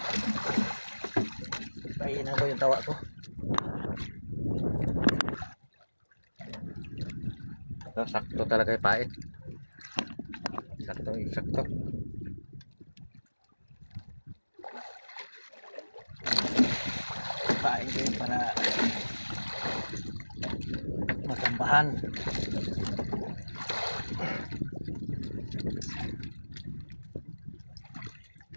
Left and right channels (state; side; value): inverted; both; correlation -1.00